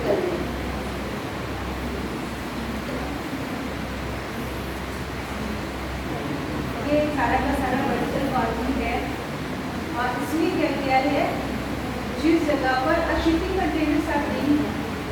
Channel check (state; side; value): identical; both; correlation 1.00